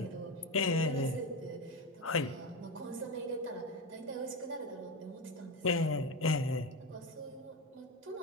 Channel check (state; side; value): normal; both; correlation 0.18